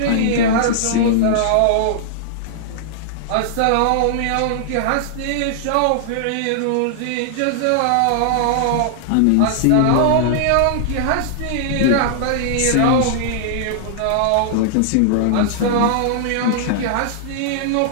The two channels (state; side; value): different; both; correlation -0.01